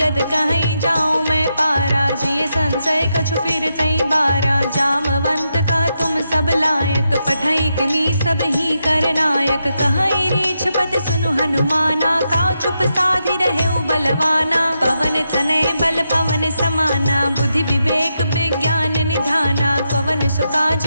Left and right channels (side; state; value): both; inverted; correlation -0.84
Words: कहीं जाऊं मैं पारा जिये संशय कछु फिर तई बारा जामवंत कह तुम सब लायक पठई किमी सब ही कर नायक कहीं रीछ पत सुनु हनुमाना का चुप साधि रहे बलवाना पवन तनय बल पवन समाना बुद्धि विवेक विज्ञान निधाना पवन सुकाज